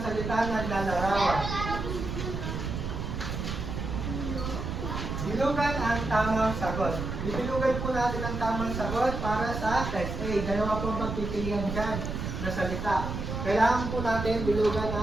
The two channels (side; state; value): right; noise; rumble, 4 dB below the sound